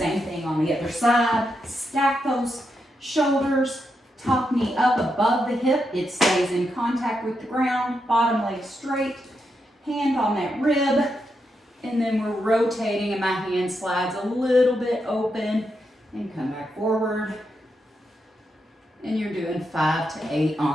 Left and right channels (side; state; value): both; normal; correlation 0.84